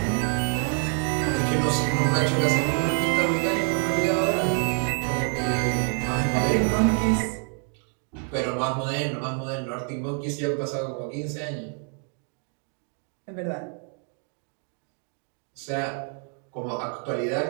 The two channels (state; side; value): quieter; left; 36.5 dB